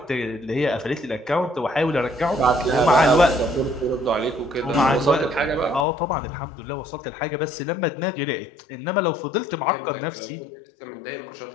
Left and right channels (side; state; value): right; drops out; at 5.9 s